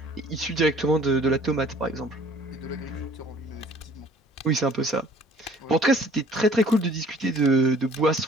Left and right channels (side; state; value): both; normal; correlation 0.53